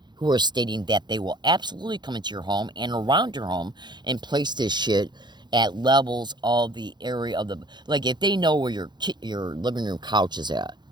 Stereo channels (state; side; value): late; left; 0.21 ms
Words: who are stating that they will absolutely come into your home and around your home and place this shit at levels of the area of the... Like, if they know where your living room couch is at,